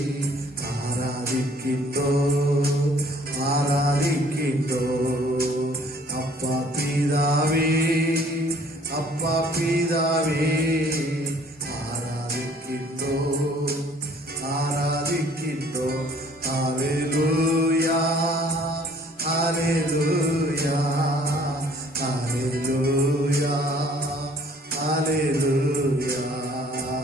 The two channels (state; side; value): normal; both; correlation 0.57